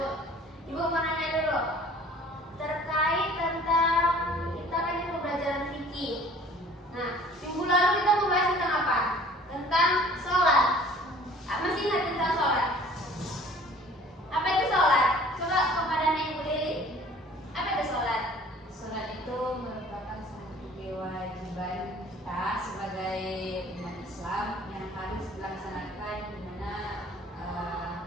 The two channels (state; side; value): normal; both; correlation 0.50